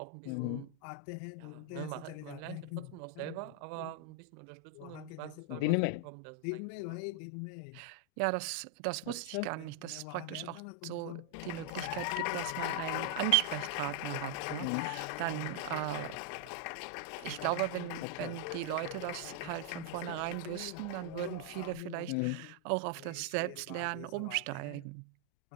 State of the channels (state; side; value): different; both; correlation 0.00